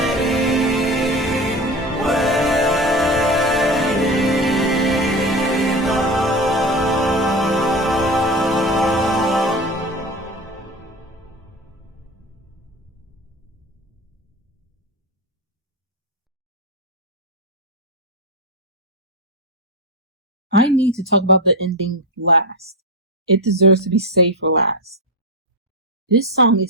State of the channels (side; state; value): both; normal; correlation 0.21